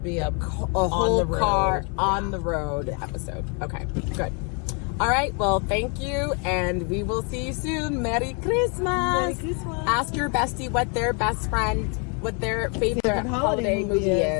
be a whole car on the road episode. Okay. Good. All right. Well, thank you, and we will see you soon. Merry Christmas. Merry Christmas. Ask your bestie what their favorite holiday movie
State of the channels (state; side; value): quieter; right; 36.2 dB